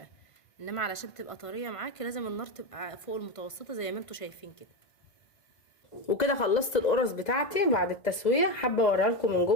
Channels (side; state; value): right; late; 1.9 ms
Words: انما علشان تبقى طريه معاكي لازم النار تبقى فوق المتوسطه زي ما انتوا شايفين كده. وكده خلصت القرص بتاعتي بعد التسويه، حابه اوريها لكم من